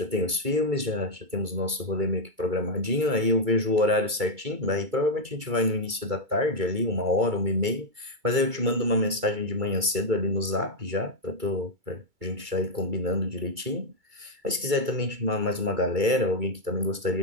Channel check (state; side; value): late; left; 2.3 ms